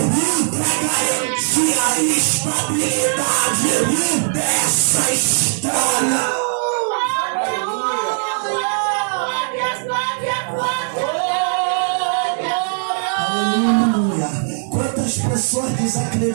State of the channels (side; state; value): left; silent; 63 dB below the other